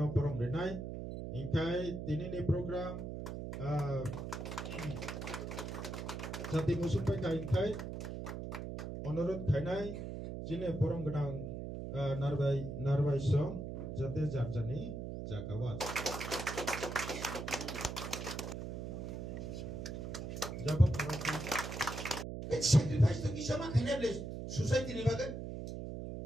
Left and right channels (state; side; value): noise; right; hum, 6 dB below the sound